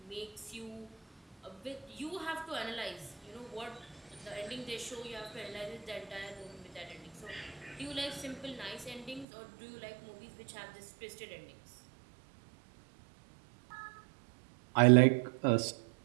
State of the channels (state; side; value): drops out; left; at 9.2 s